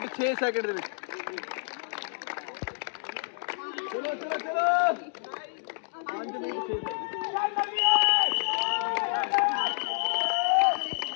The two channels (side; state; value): right; silent; digital silence